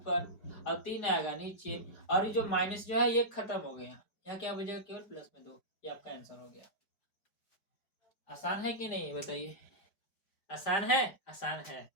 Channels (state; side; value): late; right; 5.0 ms